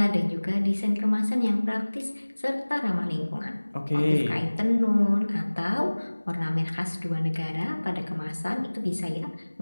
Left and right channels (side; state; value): both; inverted; correlation -1.00